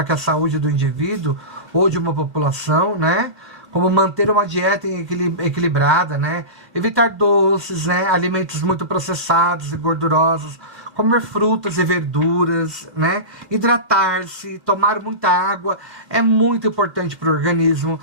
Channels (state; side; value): late; left; 2.6 ms